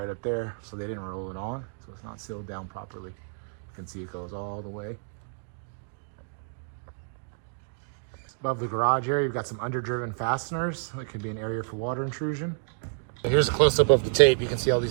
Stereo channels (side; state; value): left; silent; digital silence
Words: up there. So they didn't roll it on, so it's not sealed down properly. You can see it goes all the way. Above the garage area, you've got some underdriven fasteners. That could be an area for water intrusion. Here's a close-up of the tape. You can see all